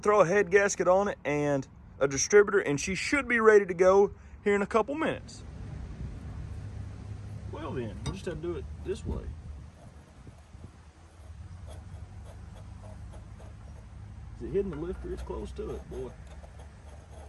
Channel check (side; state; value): both; identical; correlation 1.00